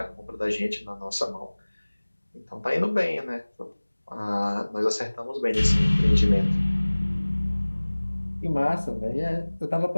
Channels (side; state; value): both; inverted; correlation -1.00